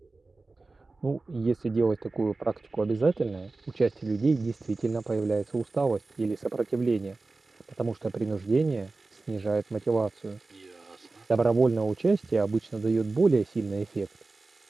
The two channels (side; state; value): left; quieter; 3.5 dB